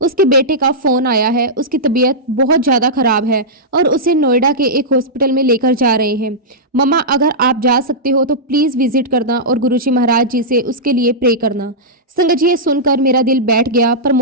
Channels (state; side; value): normal; both; correlation -0.12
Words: बेटे का फोन आया है, उसकी तबीयत बहुत ज्यादा खराब है और उसे नोएडा के एक हॉस्पिटल में लेकर जा रहे हैं। मम्मा, अगर आप जा सकते हो तो प्लीज विजिट करना और गुरुजी महाराज जी से उसके लिए प्रे करना। संगत जी, ये सुनकर मेरा दिल बैठ गया।